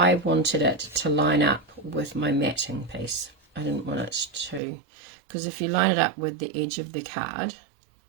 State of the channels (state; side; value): drops out; left; at 4.6 s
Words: wanted it to line up with my matting piece. I didn't want it to, because if you line it up with the edge of the card,